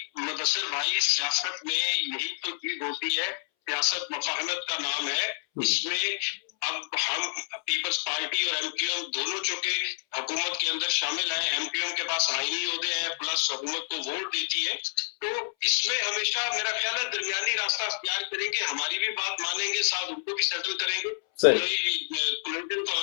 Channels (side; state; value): right; silent; 59 dB below the other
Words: مدثر بھائی, سیاست میں یہی تو چیز ہوتی ہے, سیاست مفاہمت کا نام ہے. اس میں اب ہم پیپلز پارٹی اور ایم کیو ایم دونوں چونکہ حکومت کے اندر شامل ہیں, ایم کیو ایم کے پاس آئینی عہدے ہیں پلس حکومت کو ووٹ دیتی ہے, تو اس میں ہمیشہ میرا خیال ہے درمیانی راستہ اختیار کریں گے, ہماری بھی بات مانیں گے, ساتھ ان کو بھی سیٹل کریں گے.